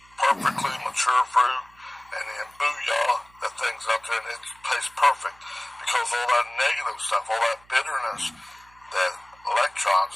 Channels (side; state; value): right; noise; hum, 29 dB below the sound